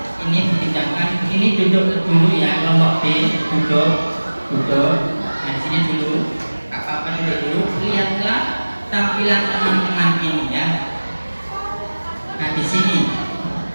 Ini dipinjamkan. Ini duduk dulu ya, kelompok B duduk. Nah di sini dulu, apa-apa dulu. Lihatlah tampilan teman-teman ini ya. Nah di sini,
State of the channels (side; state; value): both; inverted; correlation -1.00